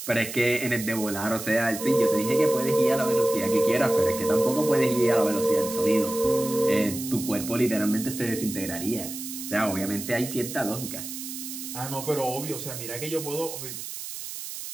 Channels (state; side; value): noise; right; hiss, 9 dB below the sound